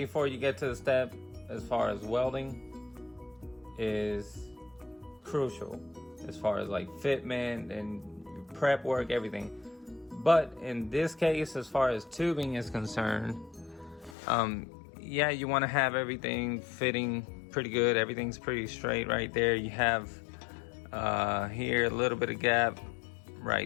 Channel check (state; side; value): drops out; right; at 14.2 s